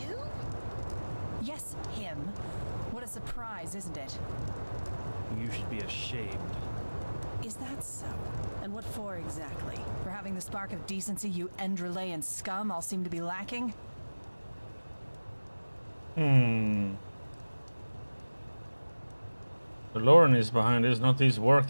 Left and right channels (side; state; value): both; inverted; correlation -1.00